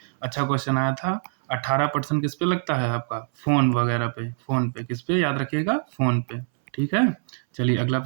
अच्छा क्वेश्चन आया था। 18% किस पे लगता है आपका? फ़ोन वगैरह पे। फ़ोन पे किस पे? याद रखिएगा, फ़ोन पे। ठीक है, चलिए अगला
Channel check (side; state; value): left; silent; 62 dB below the other